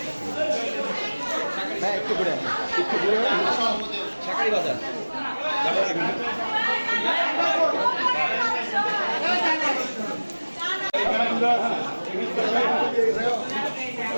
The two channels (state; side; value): inverted; both; correlation -1.00